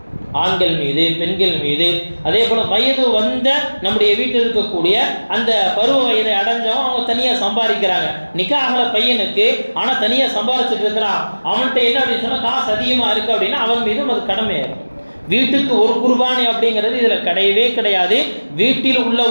ஆண்கள் மீது, பெண்கள் மீது. அதே போல வயது வந்த நம்முடைய வீட்டில் இருக்கக்கூடிய அந்த பருவ வயதை அடைஞ்சவன் அவங்க தனியா சம்பாதிக்கிறாங்க. நிக்காஹ்ல பையனுக்கு ஆனா தனியா சம்பாதிச்சுட்டு இருக்கிறான், அவன்கிட்ட என்ன அப்படின்னு சொன்னா காசு அதிகமா இருக்கு அப்படின்னா அவன் மீதும் அது கடமையாகும். வீட்டுக்கு ஒரு குர்பானி அப்படிங்கிறது இதுல கிடையவே கிடையாது. வீட்டில் உள்ள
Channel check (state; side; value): inverted; both; correlation -1.00